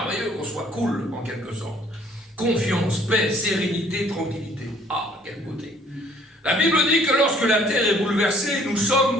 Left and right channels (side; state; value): both; normal; correlation 0.59